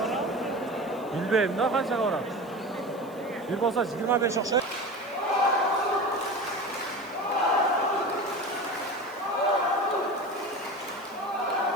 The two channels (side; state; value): right; noise; hiss, 26 dB below the sound